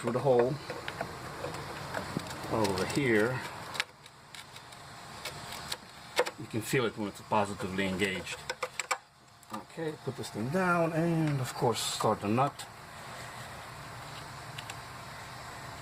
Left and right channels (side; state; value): both; identical; correlation 1.00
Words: the hole. Over here. You can feel it when it's positively engaged. Okay, put this thing down and of course start the nut.